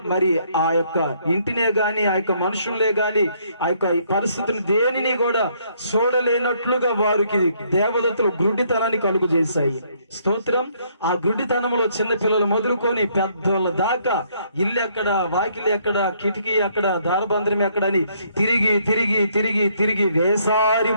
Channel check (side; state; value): both; inverted; correlation -0.68